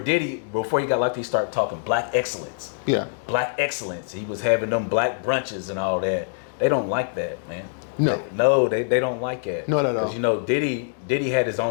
before he got locked, he started talking black excellence. Yeah. Black excellence. He was having them black brunches and all that. They don't like that, man. No. They don't like it. Not at all. Because, you know, Diddy had his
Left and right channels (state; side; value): silent; right; digital silence